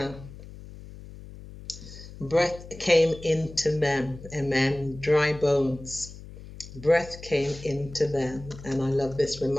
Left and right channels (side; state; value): left; noise; hum, 15 dB below the sound